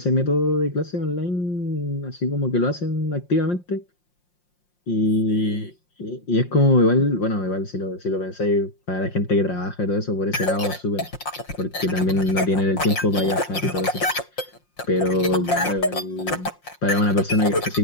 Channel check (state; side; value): late; right; 5.6 ms